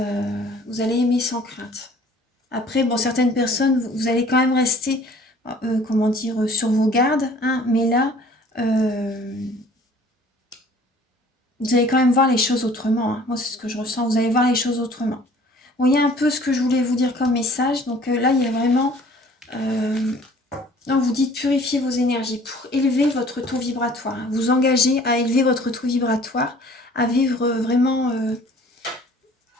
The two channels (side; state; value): both; normal; correlation 0.52